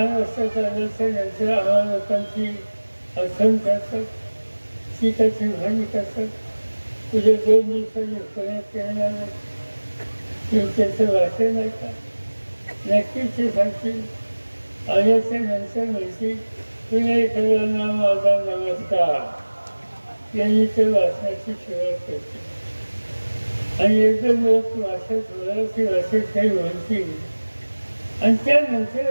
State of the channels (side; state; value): both; inverted; correlation -1.00